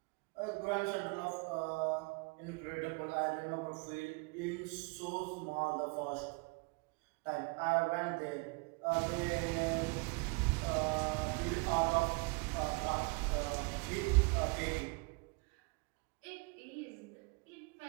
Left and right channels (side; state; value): left; quieter; 30.9 dB